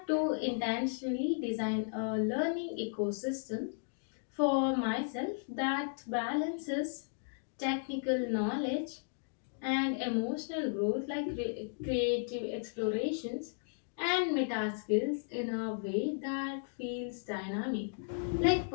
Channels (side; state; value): right; silent; digital silence